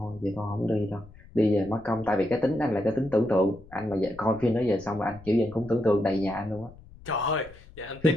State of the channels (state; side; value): noise; left; rumble, 21 dB below the sound